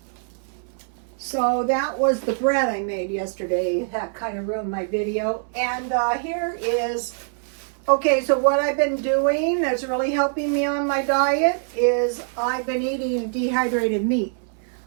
So that was the bread I made yesterday. That kind of ruined my video. And here is, okay, so what I've been doing that's really helping me on my diet is I've been eating dehydrated meat.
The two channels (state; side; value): silent; left; 59 dB below the other